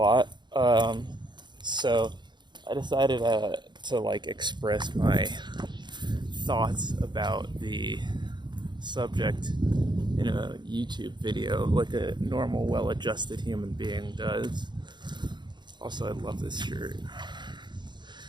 So I decided to express my thoughts about the subject in a YouTube video, like a normal, well-adjusted human being does. Also, I love this shirt.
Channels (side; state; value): left; late; 0.22 ms